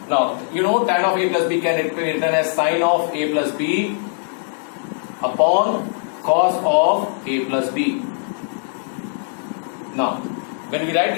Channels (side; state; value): right; silent; digital silence